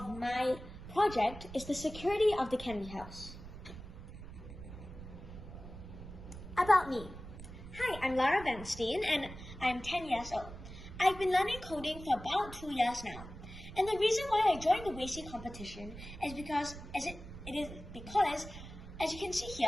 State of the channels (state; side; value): noise; right; rumble, 13 dB below the sound